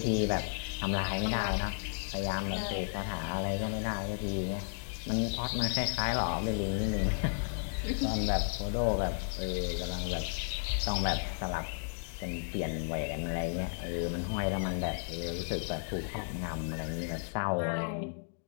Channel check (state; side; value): silent; right; digital silence